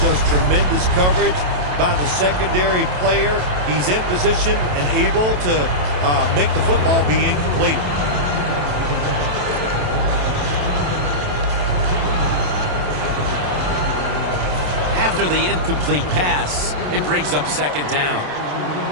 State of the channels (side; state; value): left; late; 27 ms